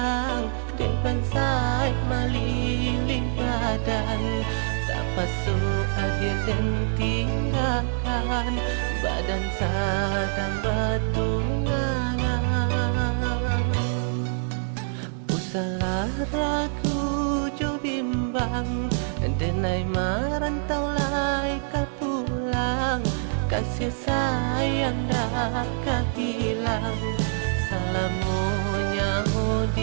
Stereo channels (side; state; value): left; silent; 61 dB below the other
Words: Dan pansai meliling badan, tak pasuk akhir dan tinggalkan. Badan sadang bertunangan. Usalah ragu jo bimbang, denai merantau lai pulang. Kasih sayang dah hilang. Salamunya